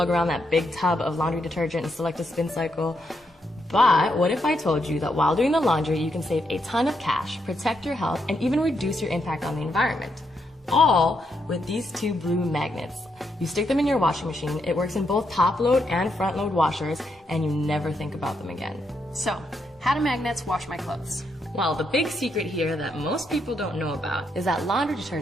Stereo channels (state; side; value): normal; both; correlation 0.80